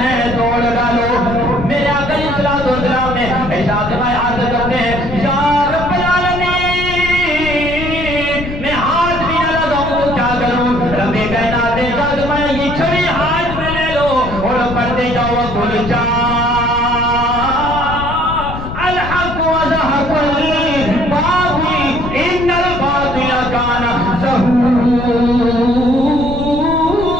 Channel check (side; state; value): left; noise; rumble, 8 dB below the sound